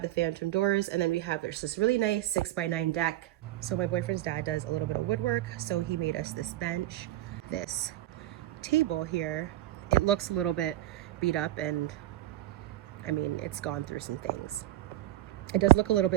the phantom doors, and then there's this really nice 6x9 deck. So my boyfriend's dad does a little bit of woodwork. So he made us this bench, this table here. It looks a little bit beat up, and I mean, it's gone through some things. It does look a little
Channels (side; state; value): left; quieter; 14.6 dB